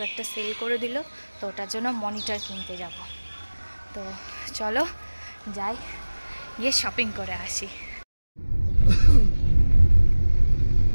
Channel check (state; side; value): inverted; both; correlation -1.00